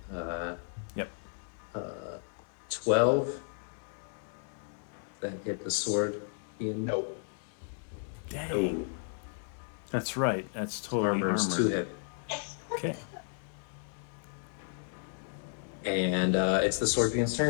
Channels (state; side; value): silent; right; digital silence